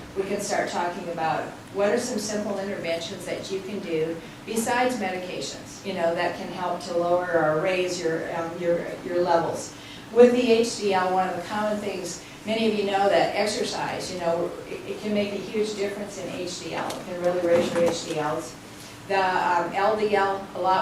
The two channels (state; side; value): identical; both; correlation 1.00